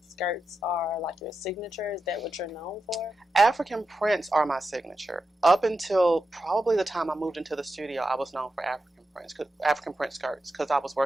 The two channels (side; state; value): both; normal; correlation 0.89